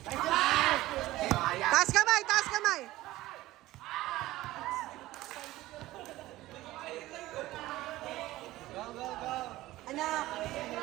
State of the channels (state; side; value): quieter; left; 16.9 dB